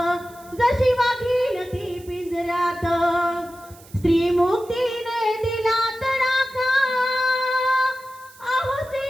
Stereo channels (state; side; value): noise; right; hiss, 23 dB below the sound